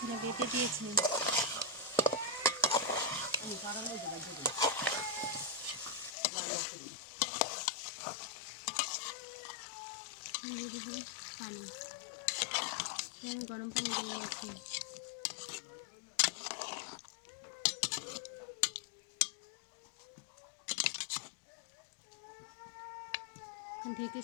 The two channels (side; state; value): right; drops out; at 6.1 s